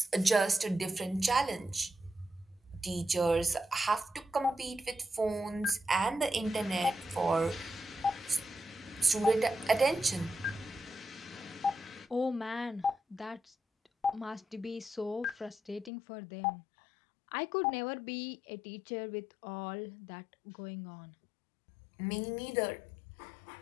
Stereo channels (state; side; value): drops out; right; at 15.9 s